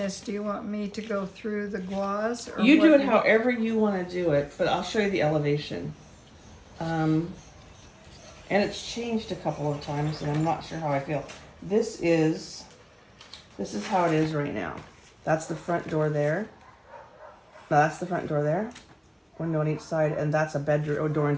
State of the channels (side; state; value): both; identical; correlation 1.00